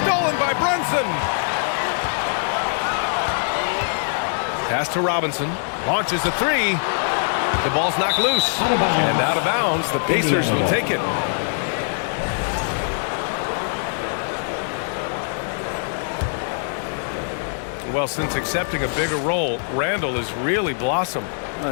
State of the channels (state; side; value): silent; right; 64 dB below the other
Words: stolen by Brunson. Pass to Robinson. Launches a 3. The ball's knocked loose. And out of bounds. The Pacers will take it. Well, since accepting a bigger role, Randall has really blossomed. Well,